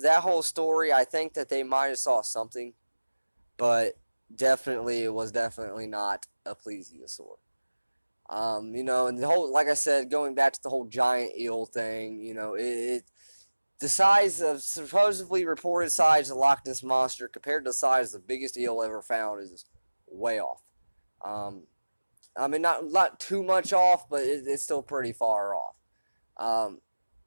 whole story, I think that they might have saw something, but it was definitely not a plesiosaur. And the whole, like I said, going back to the whole giant eel thing, the size of, supposedly reported size of the Loch Ness Monster compared to the size of the biggest eel ever found is way off. Not too much off, but it's still pretty far off.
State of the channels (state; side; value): inverted; both; correlation -1.00